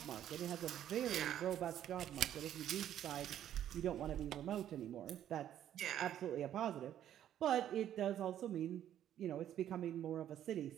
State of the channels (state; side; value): quieter; left; 11.0 dB